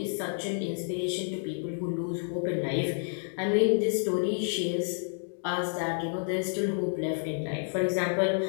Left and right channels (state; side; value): silent; right; digital silence